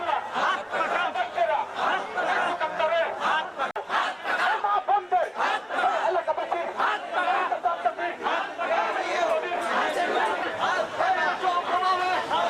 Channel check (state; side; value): identical; both; correlation 1.00